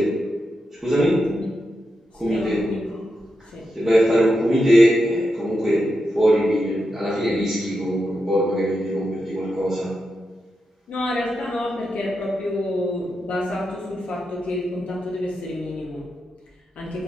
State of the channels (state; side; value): normal; both; correlation 0.87